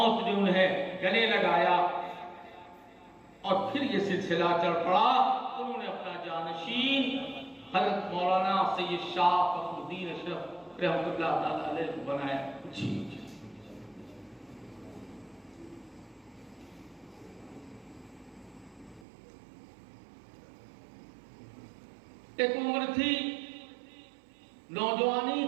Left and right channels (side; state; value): left; drops out; at 19.1 s